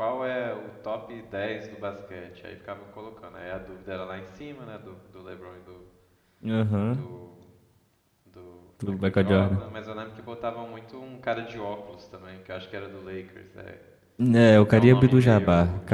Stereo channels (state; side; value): identical; both; correlation 1.00